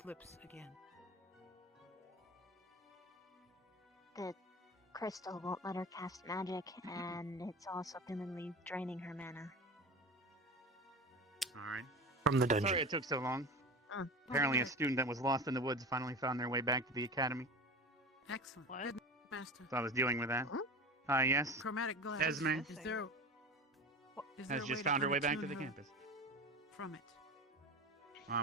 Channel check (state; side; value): normal; both; correlation 0.30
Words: again. The crystal won't let her cast magic, and it's also permanently draining her mana. Alright. From the dungeon. Sorry it took so long. Apparently a student that was lost in the woods finally found their way back to the academy. Excellent. Master. So I was dealing with that. Yes. Chromatic glass. Esme Is there a has way just to found her way back to unattune the her campus. From it.